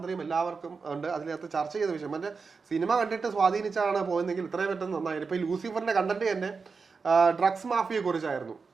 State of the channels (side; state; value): left; quieter; 4.9 dB